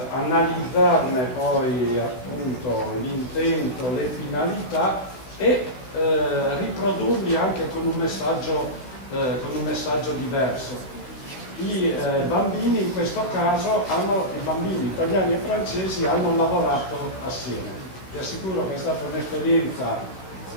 analizzarne poi appunto l'intento, le finalità e riprodurli anche con un messaggio diverso. I bambini in questo caso i bambini italiani e francesi hanno lavorato assieme. Vi assicuro che è stata un'esperienza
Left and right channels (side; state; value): right; late; 16 ms